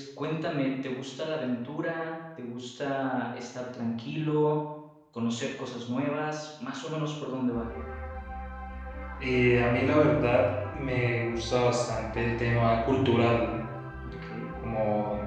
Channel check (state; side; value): identical; both; correlation 1.00